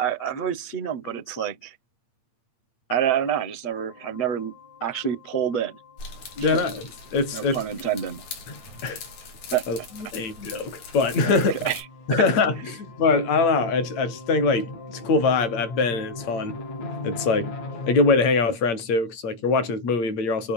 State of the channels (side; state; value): right; late; 8.6 ms